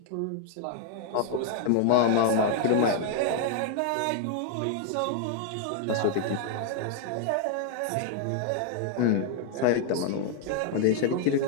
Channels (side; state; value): both; different; correlation 0.00